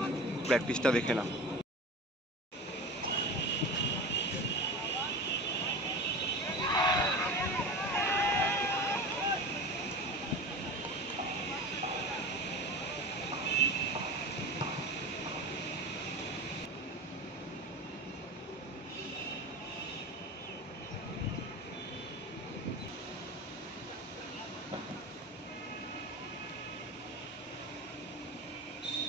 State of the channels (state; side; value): normal; both; correlation 0.30